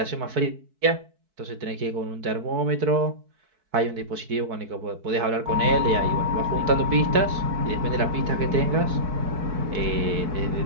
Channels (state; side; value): late; left; 4.6 ms